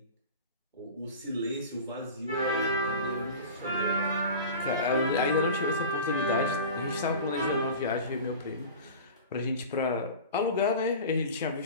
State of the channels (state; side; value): inverted; both; correlation -0.35